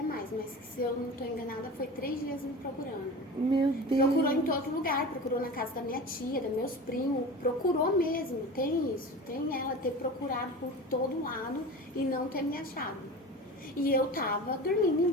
mais, mas se eu não estou enganada, foi 3 dias me procurando. Meu Deus. Procurou em todo lugar, procurou na casa da minha tia, dos meus primos, procurou mesmo, tem isso, tem ela ter procurado por todo lado e não ter me achado. E eu tava dormindo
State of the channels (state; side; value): normal; both; correlation 0.33